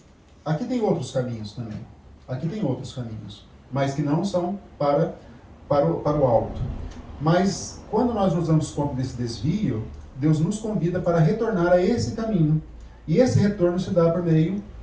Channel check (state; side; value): identical; both; correlation 1.00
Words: Aqui tem outros caminhos também. Aqui tem outros caminhos, mas que não são para o alto. Mas quando nós nos damos conta desse desvio, Deus nos convida para retornar a esse caminho. E esse retorno se dá por meio